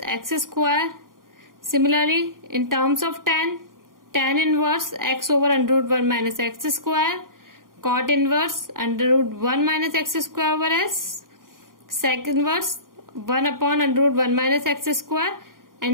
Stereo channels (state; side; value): late; left; 0.91 ms